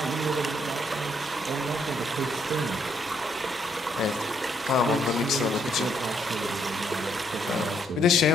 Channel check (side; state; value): both; normal; correlation 0.72